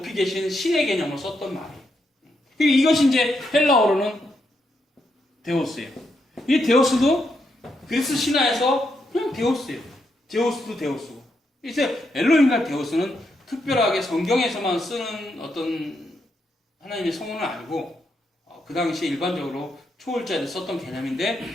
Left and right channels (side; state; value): both; normal; correlation 0.80